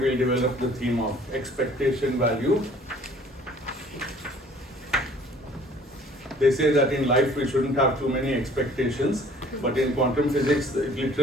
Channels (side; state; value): both; normal; correlation 0.53